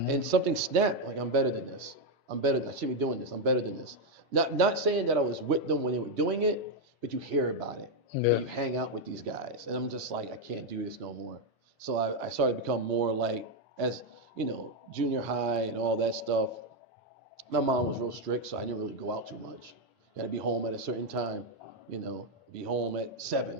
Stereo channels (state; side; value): normal; both; correlation 0.03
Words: something snapped, like I'm better than this. I shouldn't be doing this. I'm better than this. Not saying that I was with them when they were doing it, but you hear about it. Yeah. And you hang out with these guys. And I'm just like, I can't do this no more. So I started to become more like, as junior high and all that stuff. My mom was real strict, so I didn't really go out too much. You gotta be home at a certain time, be home at